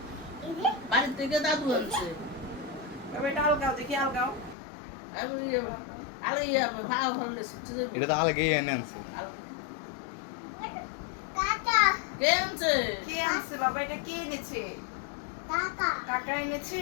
বাড়ির থেকে দাদু আনছে এটা আলগাও দেখি আলগাও ভাড়া ফেললে এটা তো আলাগেই এনে আনছে কে আনছে কে আনছে বাবা এটা কে এনেছে কাকা এনেছে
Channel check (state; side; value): drops out; right; at 4.5 s